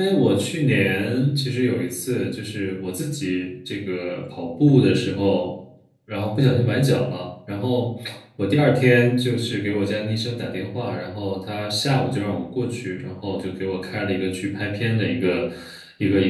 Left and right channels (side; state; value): both; identical; correlation 1.00